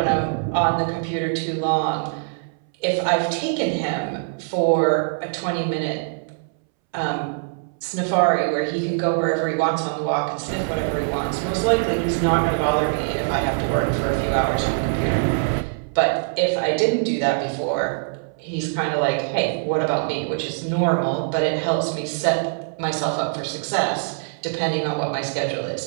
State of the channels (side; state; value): left; silent; 63 dB below the other